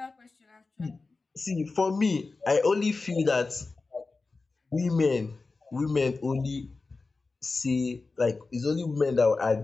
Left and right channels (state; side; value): quieter; right; 3.8 dB